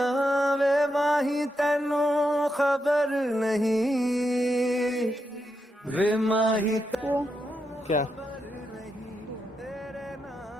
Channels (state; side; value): normal; both; correlation 0.84